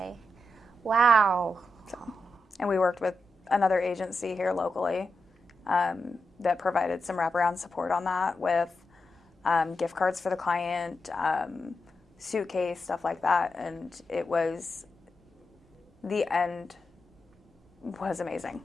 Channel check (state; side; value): normal; both; correlation 0.87